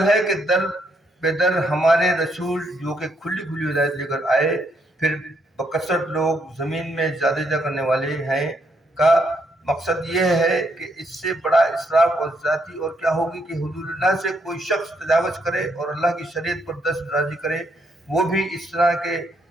ہے کہ در بے در ہمارے رسول جو کہ کھلی کھلی ہدایت لے کر آئے، پھر بکثرت لوگ زمین میں زیادہ کرنے والے ہیں، کا مقصد یہ ہے کہ اس سے بڑا اسراف اور ذاتی اور کیا ہوگی کہ حدود اللہ سے کوئی شخص تجاوز کرے اور اللہ کی شریعت پر دست درازی کرے، وہ بھی اس طرح کے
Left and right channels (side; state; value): both; normal; correlation 0.75